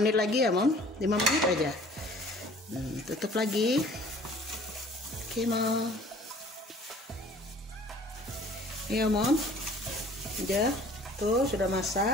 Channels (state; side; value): normal; both; correlation 0.51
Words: lagi ya Mom, 5 menit aja. Tutup lagi. Oke Mom. Iya Mom, udah tuh sudah